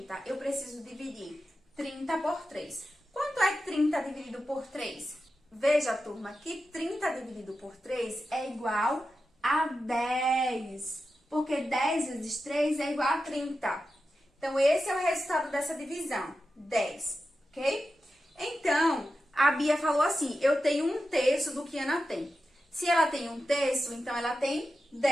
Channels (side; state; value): both; normal; correlation 0.91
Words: eu preciso dividir 30 por 3. Quanto é 30 dividido por 3? Veja, turma, que 30 dividido por 3 é igual a 10. Porque 10 vezes 3 é igual a 30. Então, esse é o resultado dessa divisão, 10, ok? Então, a Bia falou assim: eu tenho 1/3 do que Ana tem. Se ela tem 1/3, então ela tem